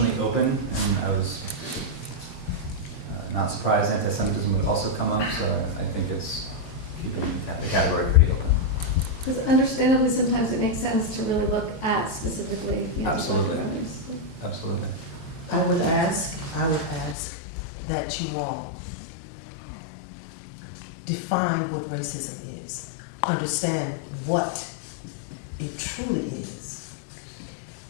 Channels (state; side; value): drops out; right; at 17.2 s